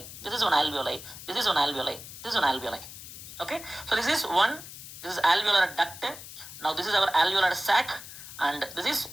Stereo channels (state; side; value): noise; left; hiss, 13 dB below the sound